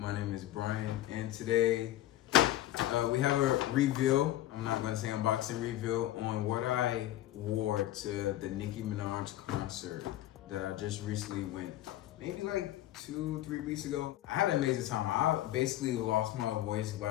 name is Brian, and today we have a reveal. I'm not going to say unboxing, reveal on what I wore to the Nicki Minaj concert that I just recently went, maybe like 2-3 weeks ago. I had an amazing time. I basically lost my voice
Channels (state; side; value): quieter; right; 14.5 dB